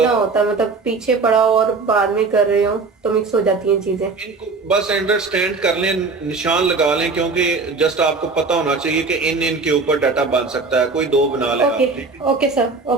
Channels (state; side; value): quieter; left; 4.1 dB